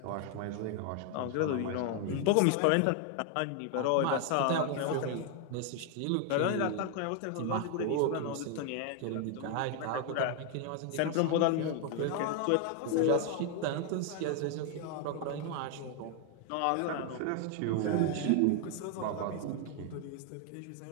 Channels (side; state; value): both; different; correlation 0.00